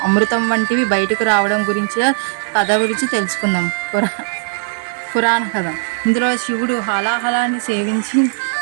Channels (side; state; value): left; silent; digital silence